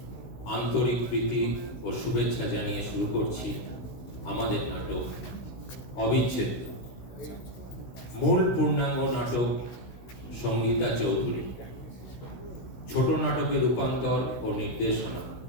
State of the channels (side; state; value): right; late; 16 ms